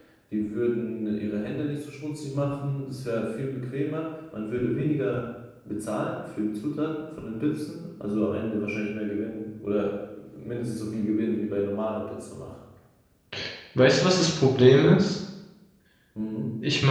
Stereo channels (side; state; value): both; identical; correlation 1.00